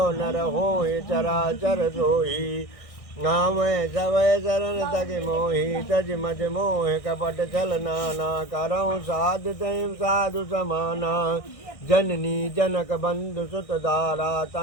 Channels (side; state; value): right; late; 1.6 ms